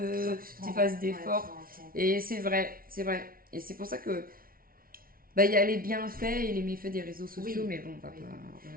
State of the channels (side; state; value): left; late; 0.43 ms